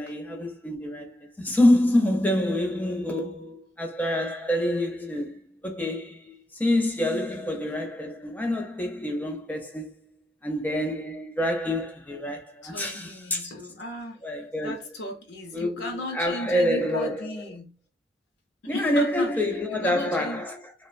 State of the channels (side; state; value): both; normal; correlation 0.76